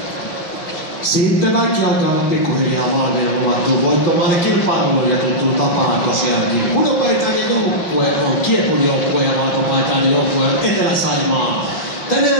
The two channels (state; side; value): late; right; 5.7 ms